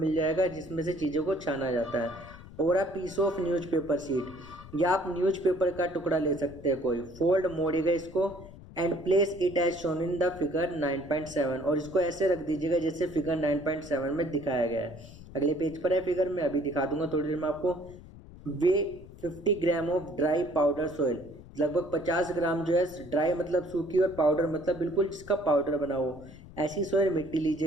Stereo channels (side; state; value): left; noise; rumble, 18 dB below the sound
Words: जाएगा, जिसमें से चीज़ों को छाना जाता है। और a piece of newspaper sheet, या आप न्यूज़पेपर का टुकड़ा ले सकते हैं कोई। फोल्ड, मोड़िएगा इसको, and place it as shown in the figure 9.7, और इसको ऐसे रख दीजिएगा जैसे फिगर 9.7 में दिखाया गया है। अगले पेज पर है फिगर, में अभी दिखा दूंगा थोड़ी देर में आपको। वे 50 gram of dry powder soil, लगभग 50 ग्राम जो है ड्राई मतलब सूखी, और पाउडर मतलब बिल्कुल जिसका पाउडर बना हो, ऐसी सॉइल मिट्टी